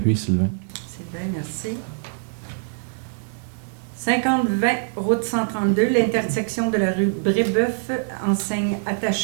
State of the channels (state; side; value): silent; left; 59 dB below the other